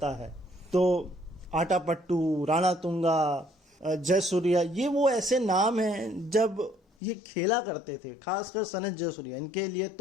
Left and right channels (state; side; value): drops out; right; at 6.8 s